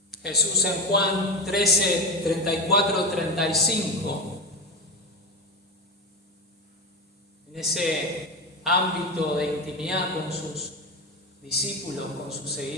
Jesús en Juan 13, 34, 35, en ese ámbito de intimidad con sus discípulos, con sus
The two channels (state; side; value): normal; both; correlation 0.20